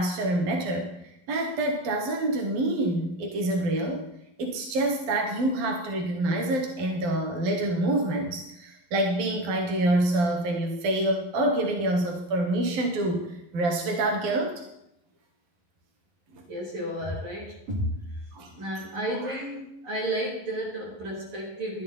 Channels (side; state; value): left; late; 12 ms